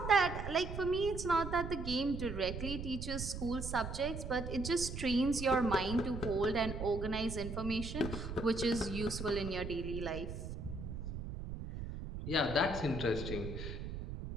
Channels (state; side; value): noise; right; rumble, 7 dB below the sound